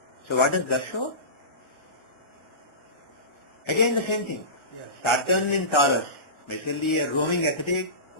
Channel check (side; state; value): right; late; 1.4 ms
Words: So what does that show? Again the same thing. Saturn in Taurus, basically a roaming ascetic